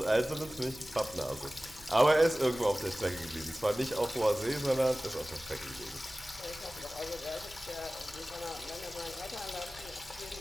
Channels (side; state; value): right; noise; hum, 22 dB below the sound